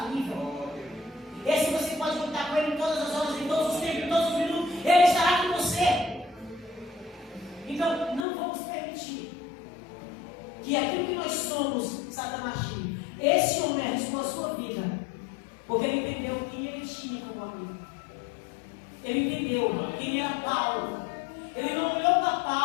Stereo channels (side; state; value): right; drops out; at 8.2 s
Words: Esse você pode contar com ele em todas as horas, em todos os tempos, em todos os minutos. Ele estará com você. Então, não vamos permitir que aquilo que nós somos, Satanás tire. Esse homem arriscou a sua vida, porque ele entendeu quem ele tinha como amigo. Ele entendeu quem era Paulo. Ele não olhou para